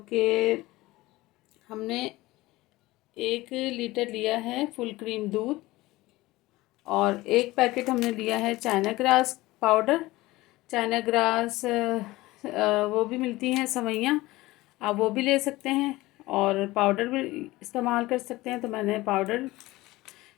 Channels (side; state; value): right; quieter; 19.2 dB